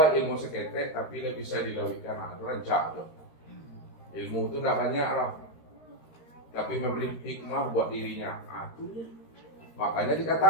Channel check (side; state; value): right; late; 13 ms